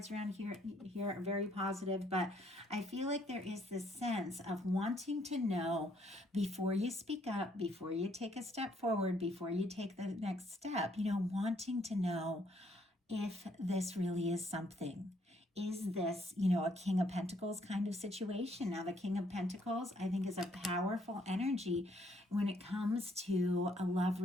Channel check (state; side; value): normal; both; correlation 0.68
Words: around here are very positive, but I feel like there is this sense of wanting to know before you speak up, before you take a step forward, before you take the next step, wanting to know if this really is something. Is this, a King of Pentacles kind of situation? Now, the King of Pentacles, I think, is a powerful energy when it comes to a love